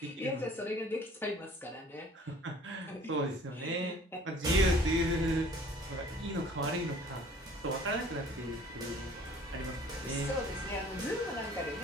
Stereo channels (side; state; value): both; normal; correlation 0.52